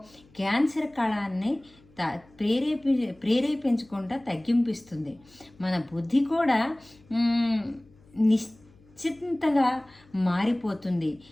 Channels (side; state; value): left; noise; hum, 28 dB below the sound